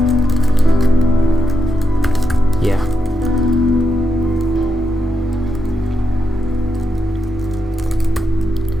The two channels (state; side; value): normal; both; correlation 0.84